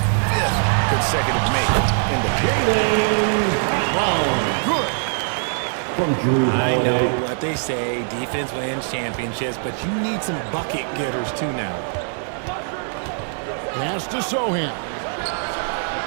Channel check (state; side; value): silent; left; 59 dB below the other